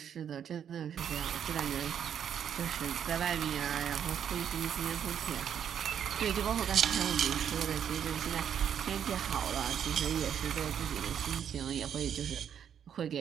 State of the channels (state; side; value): quieter; left; 8.7 dB